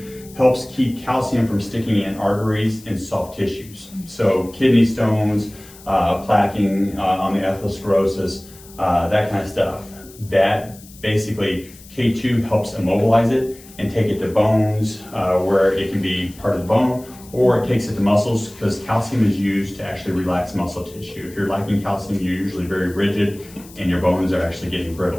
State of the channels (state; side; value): noise; left; hiss, 21 dB below the sound